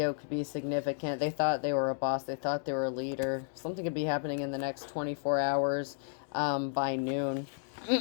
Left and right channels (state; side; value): silent; right; digital silence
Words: could be significant. They thought they were a boss. They thought they were a leader. Something could be happening in the next 24 hours by noon